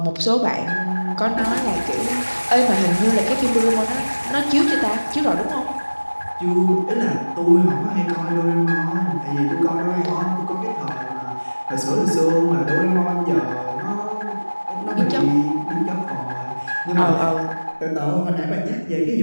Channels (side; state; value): both; inverted; correlation -1.00